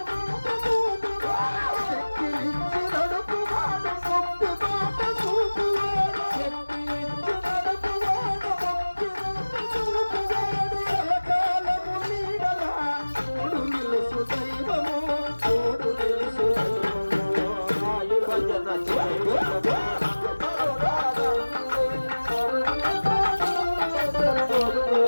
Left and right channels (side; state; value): both; inverted; correlation -1.00